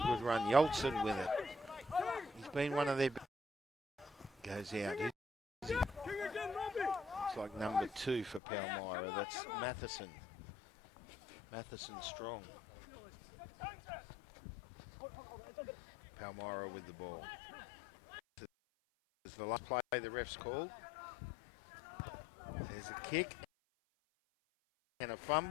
good run. Yolson with it. He's been one of their... Goes out. Looks like number 2 for Palmyra. That's Matheson. Matheson strong. Palmyra with the ball. This is the last play the ref's called. There's a kick and a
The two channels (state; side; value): drops out; right; at 8.4 s